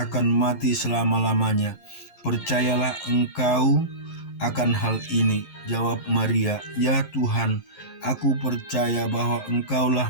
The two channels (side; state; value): right; late; 11 ms